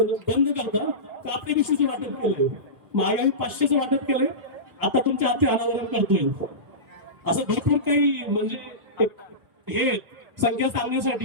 करता कापडी पिशवीचे वाटप केले. महागाई 500चं वाटप केलंय. आता तुमच्या हाती अनावरण करतोय. असं भरपूर काही म्हणजे हे संख्या सांगण्यासाठी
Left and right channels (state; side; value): late; left; 1.4 ms